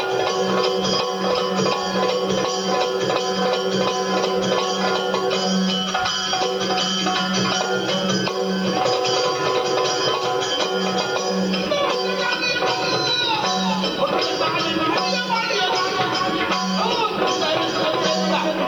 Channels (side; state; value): right; noise; hiss, 29 dB below the sound